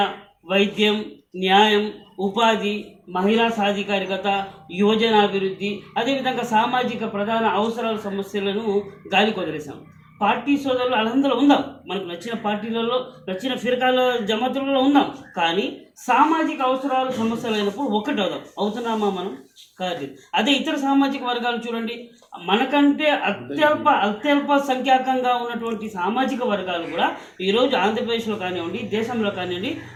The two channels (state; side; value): identical; both; correlation 1.00